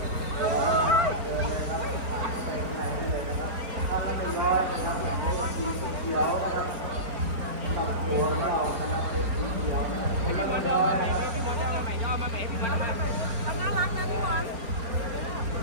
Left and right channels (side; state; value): left; late; 4.5 ms